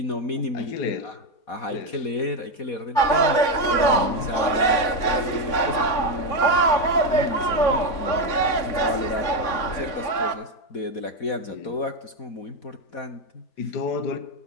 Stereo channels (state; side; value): late; right; 3.6 ms